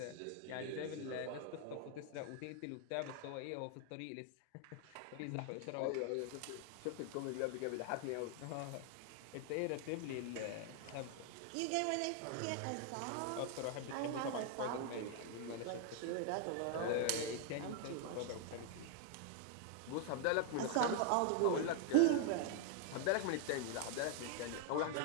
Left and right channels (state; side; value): different; both; correlation 0.00